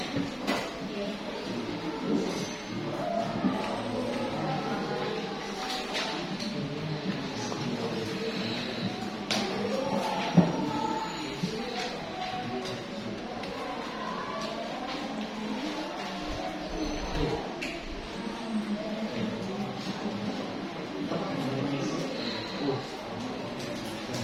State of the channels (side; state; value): both; identical; correlation 1.00